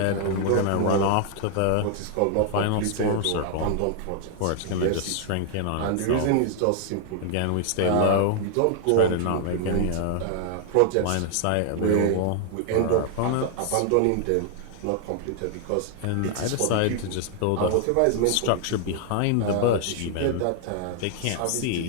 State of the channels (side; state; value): both; different; correlation 0.00